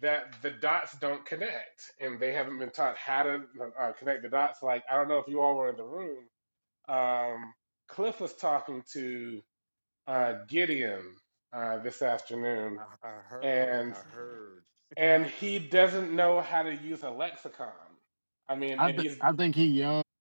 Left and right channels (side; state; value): both; inverted; correlation -1.00